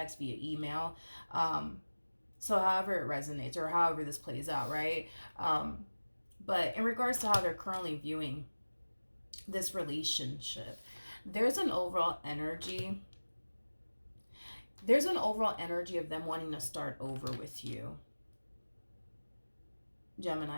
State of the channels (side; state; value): both; inverted; correlation -1.00